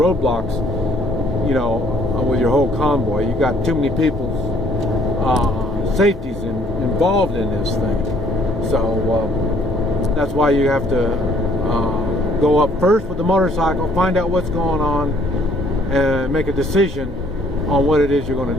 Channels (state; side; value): normal; both; correlation 0.62